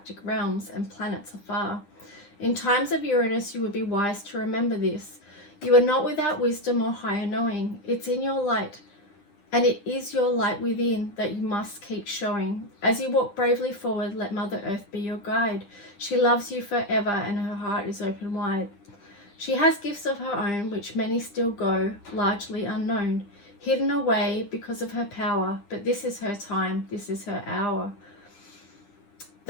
realms and planets afar. In times of Uranus, you would be wise to remember this. You are not without wisdom or higher knowing. It's in your light, and it is your light within that you must keep showing. As you walk bravely forward, let Mother Earth be your guide. She loves you forever, and her heart is open wide. She has gifts of her own, which many still go, largely unknown, hidden away because of her power, but this is her time, this is her hour.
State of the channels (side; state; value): right; late; 9.9 ms